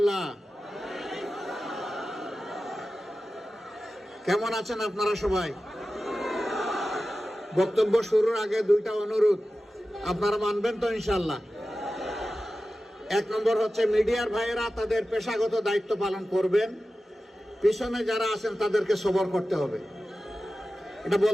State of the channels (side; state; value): both; normal; correlation 0.94